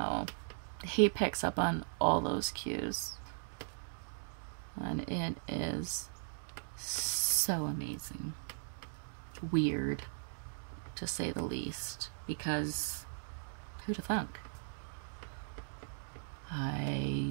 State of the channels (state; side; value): silent; left; digital silence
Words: he picks up on all those cues, and it is so amazing. Weird, to say the least, because who'd have thunk? I